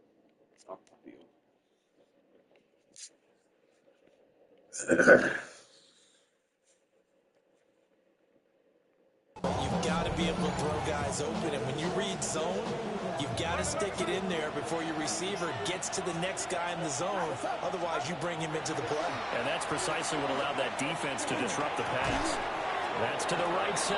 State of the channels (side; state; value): both; identical; correlation 1.00